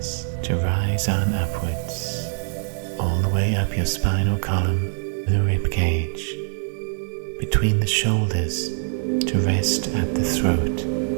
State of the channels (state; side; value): silent; left; 56 dB below the other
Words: to rise on upwards, all the way up your spinal column, the rib cage, between the shoulders, to rest at the throat.